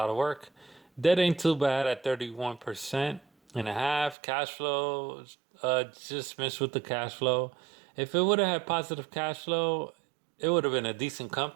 of work. Debt ain't too bad at 31.5%. Cash flow, just missed with the cash flow. If it would have had positive cash flow, it would have been a decent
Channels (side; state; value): left; drops out; at 4.2 s